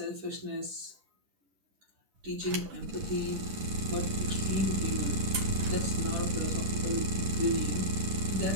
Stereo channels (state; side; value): late; left; 11 ms